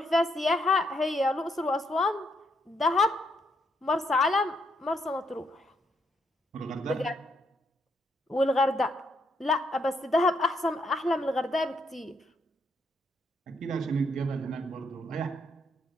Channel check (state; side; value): normal; both; correlation 0.76